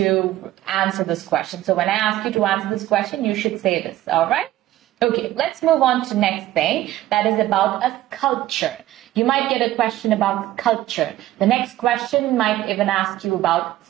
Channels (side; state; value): left; quieter; 14.6 dB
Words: answer this question. So when I ask you to answer this question, you should say this, all right? Okay, let's move on to next thing. That is about a sculpture. You might get a question about sculpture. The next question might even ask you about